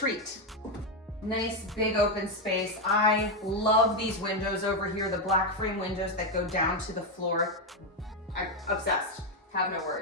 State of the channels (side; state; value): both; normal; correlation 0.06